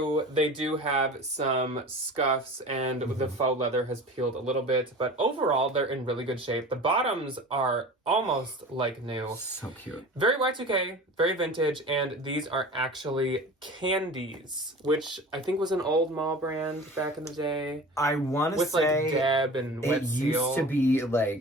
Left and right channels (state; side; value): normal; both; correlation 0.37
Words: They do have some scuffs, and the faux leather has peeled a little bit. But overall, they're in really good shape. The bottoms are almost like new. So cute. Very Y2K, very vintage, and these are actually candies, which I think was an old mall brand back in the day. I want to With say like Deb and Wet it Seal. used to be